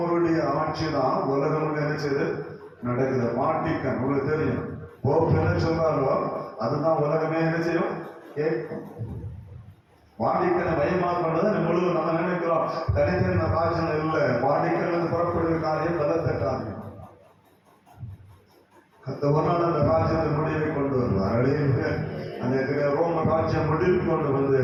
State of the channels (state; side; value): identical; both; correlation 1.00